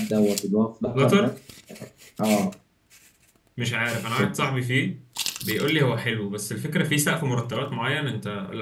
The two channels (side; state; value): both; identical; correlation 1.00